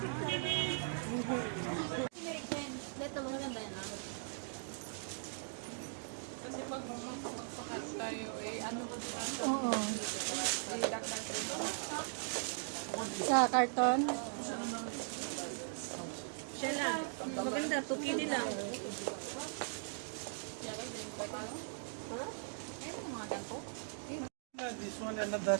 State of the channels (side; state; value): left; silent; digital silence